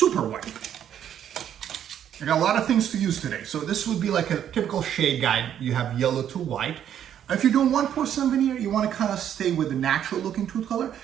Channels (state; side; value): quieter; left; 9.9 dB